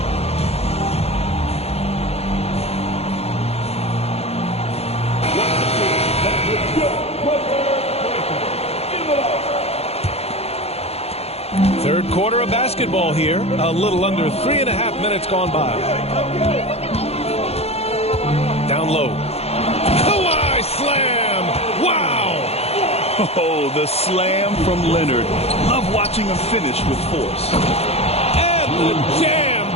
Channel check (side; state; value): right; late; 0.30 ms